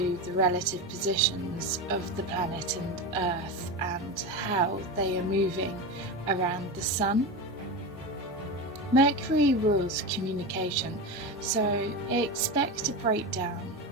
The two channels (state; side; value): normal; both; correlation 0.21